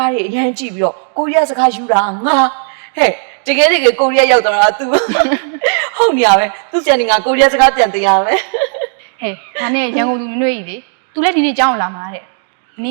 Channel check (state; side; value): silent; left; 71 dB below the other